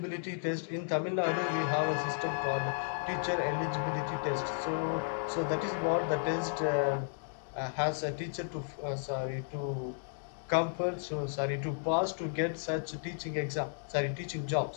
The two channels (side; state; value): right; silent; digital silence